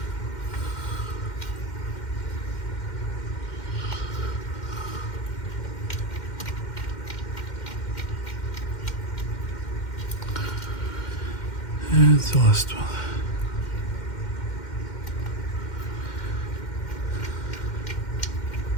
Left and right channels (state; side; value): late; right; 2.1 ms